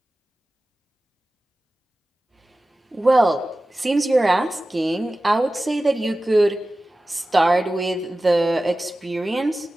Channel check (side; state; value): both; normal; correlation 0.96